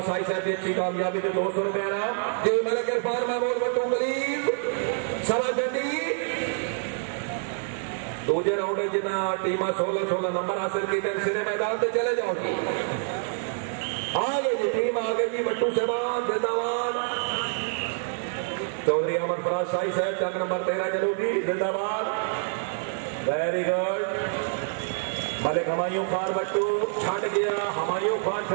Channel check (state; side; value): silent; left; 60 dB below the other